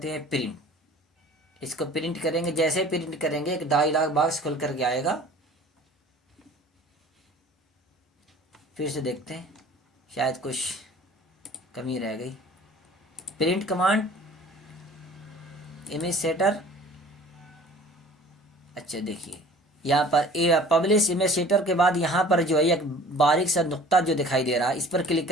हैं प्रिंट। इसको प्रिंट करेंगे, जैसे प्रिंट करेंगे एक डायलॉग बॉक्स खुल करके आएगा। फिर से देखते हैं, शायद कुछ कमी रह गई। प्रिंट कमांड इमेज सेटर, अच्छा देखिए यहाँ पर पब्लिश इमेज सेटर के बाद यहाँ पर जो है एक बारीक सा नुक्ता जो दिखाई दे रहा है, इस पर क्लिक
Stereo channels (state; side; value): normal; both; correlation 0.48